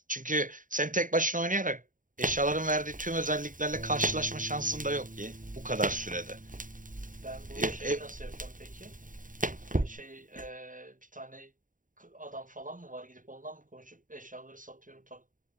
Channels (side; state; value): left; late; 0.39 ms